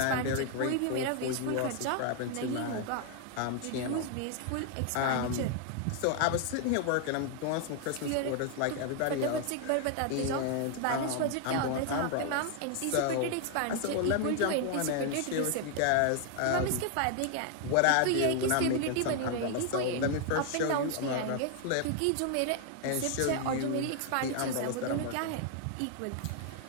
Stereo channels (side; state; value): both; different; correlation 0.00